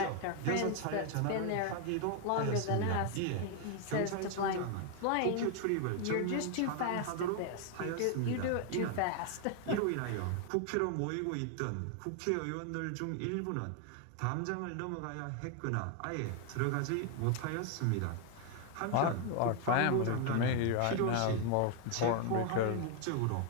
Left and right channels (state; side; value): different; both; correlation 0.01